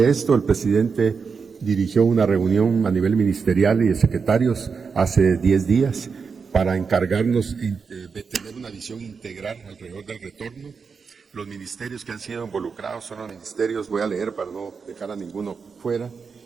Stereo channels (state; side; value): quieter; left; 5.5 dB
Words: esto, el presidente dirigió una reunión a nivel ministerial y de secretarios hace 10 días para encargarnos de tener una visión integral alrededor del retorno. Los ministerios que han sido involucrados son los ministerios, voy a leer para no dejar a ninguno fuera: